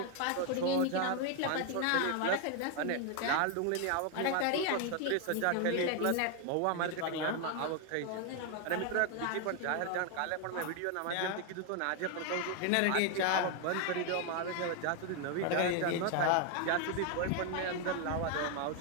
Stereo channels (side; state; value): both; different; correlation 0.01